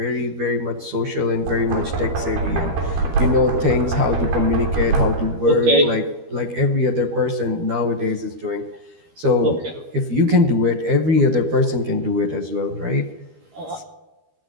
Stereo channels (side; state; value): left; late; 13 ms